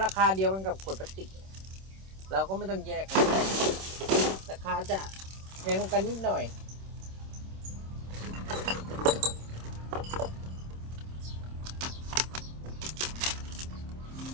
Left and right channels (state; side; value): late; left; 26 ms